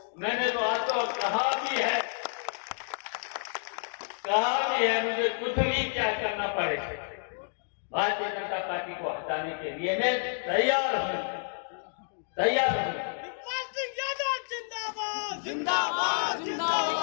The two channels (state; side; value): silent; right; digital silence